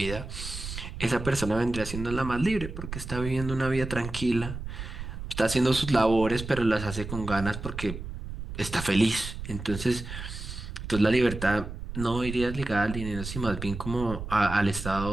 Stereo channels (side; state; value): right; noise; rumble, 8 dB below the sound